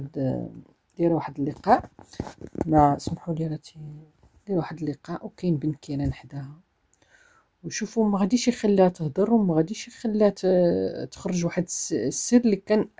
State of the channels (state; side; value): identical; both; correlation 1.00